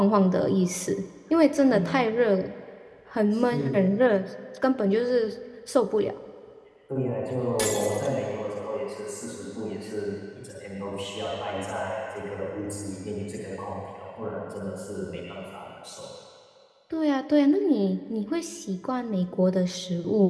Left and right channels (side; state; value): both; identical; correlation 1.00